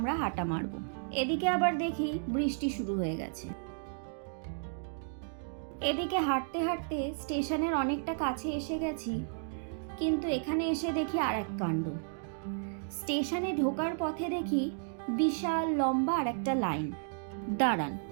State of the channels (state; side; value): silent; left; digital silence